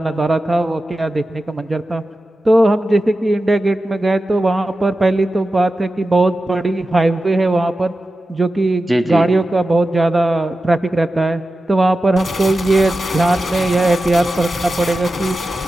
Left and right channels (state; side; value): normal; both; correlation 0.93